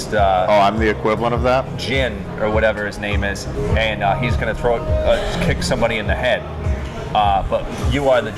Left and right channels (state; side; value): identical; both; correlation 1.00